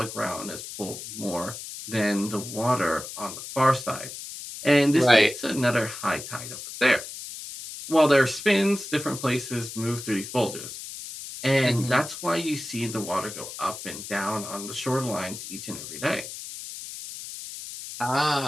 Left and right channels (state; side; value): noise; left; hiss, 10 dB below the sound